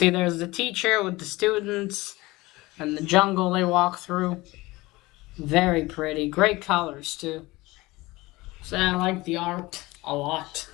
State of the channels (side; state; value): right; quieter; 20.7 dB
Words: there's the teacher with the students and the jungle they walk through. Very pretty, great colors too. So I like the art a lot.